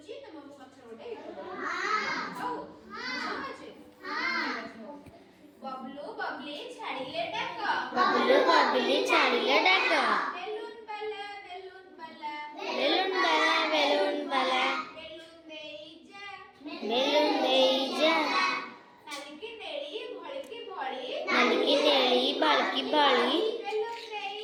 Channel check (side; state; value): both; identical; correlation 1.00